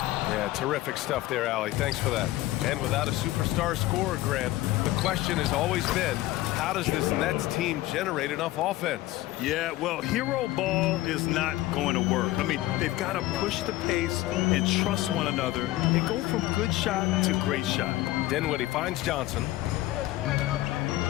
Yeah, terrific stuff there, Allie. Thanks for that. And without a superstar scorer, Grant, the question has always been, how does this Nets team generate enough offense? Yeah, well, hero ball is not going to work. I mean, they've got to push the pace and trust one another and go from good shot to great shot. Dinwiddie finds Johnson.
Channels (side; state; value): right; quieter; 16.7 dB